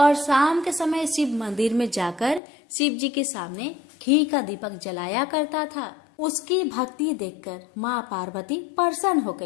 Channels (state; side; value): drops out; right; at 2.4 s